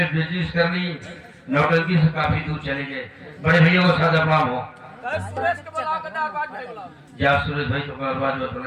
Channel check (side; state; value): both; identical; correlation 1.00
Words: बिजनेस कर ली, नौटंकी से काफी दूर चले गए। बड़े भैया को सादा प्रणाम हो। जा सुरेश भाई तो बात बता